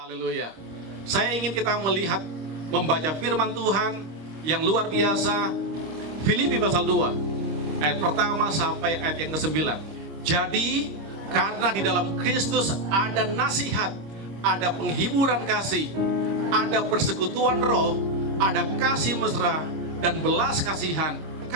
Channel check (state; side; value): late; left; 26 ms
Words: Haleluya. Saya ingin kita melihat, membaca firman Tuhan yang luar biasa. Filipi pasal 2 ayat pertama sampai ayat yang ke-9. Jadi karena di dalam Kristus ada nasihat, ada penghiburan kasih, ada persekutuan roh, ada kasih mesra dan belas kasihan.